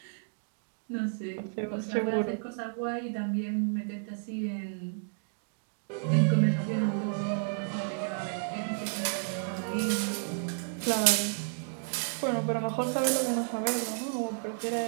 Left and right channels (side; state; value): left; silent; digital silence